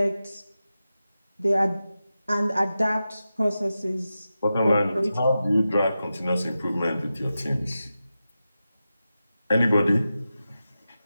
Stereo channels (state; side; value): inverted; both; correlation -0.92